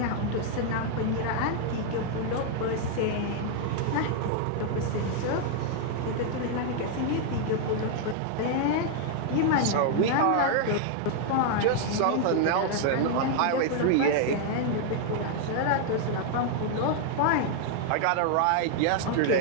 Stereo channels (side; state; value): both; different; correlation 0.00